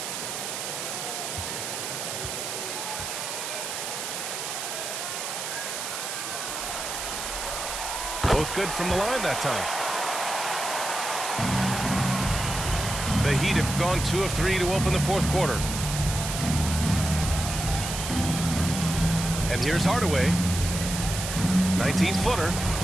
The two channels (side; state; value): right; noise; hiss, 5 dB below the sound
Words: Both good from the line that time. The Heat have gone 2 of 3 to open the fourth quarter. And here's Hardaway. 19-footer.